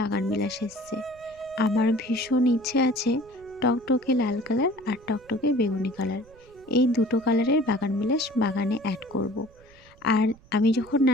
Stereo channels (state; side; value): noise; right; rumble, 26 dB below the sound